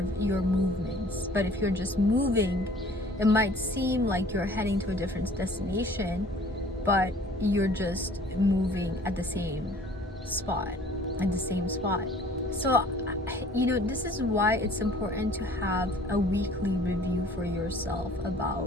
your movements. But if you're just moving, it might seem like you're heading to a different destination, but you're just moving at the same spot. So, this is why it's important to have a weekly review for yourself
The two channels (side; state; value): both; normal; correlation 0.51